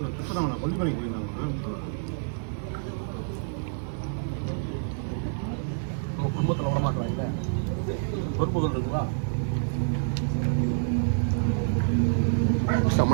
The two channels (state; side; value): silent; left; 56 dB below the other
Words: இப்போ தான் கொல்லிமலைக்கு போயிருந்தாங்க. குடும்பத்தில் விட மாட்டாங்க. பொறுப்புகள் இருக்குங்களா?